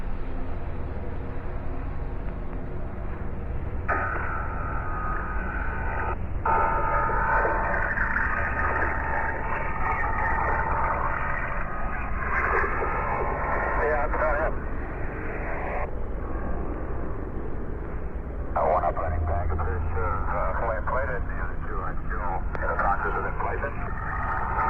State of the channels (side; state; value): both; identical; correlation 1.00